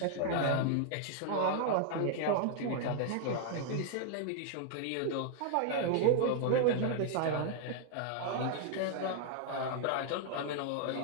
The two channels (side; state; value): both; different; correlation -0.01